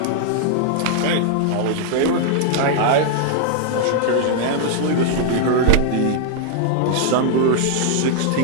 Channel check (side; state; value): both; different; correlation 0.00